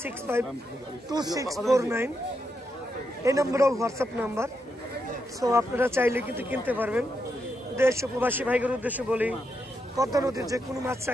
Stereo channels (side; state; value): both; normal; correlation 0.83